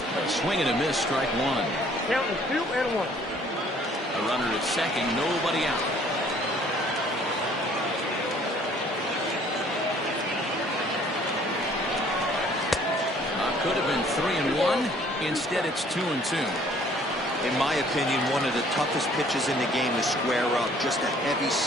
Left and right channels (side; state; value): both; normal; correlation 0.58